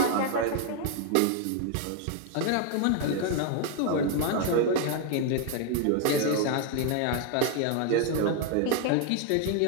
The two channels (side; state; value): both; different; correlation 0.01